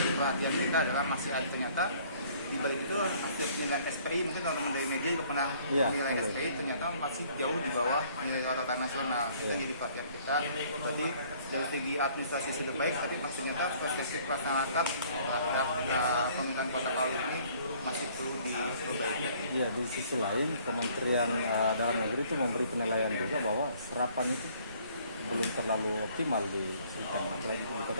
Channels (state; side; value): inverted; both; correlation -0.58